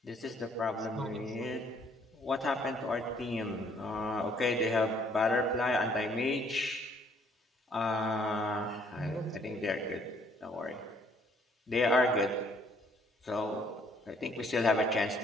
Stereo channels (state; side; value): normal; both; correlation 0.63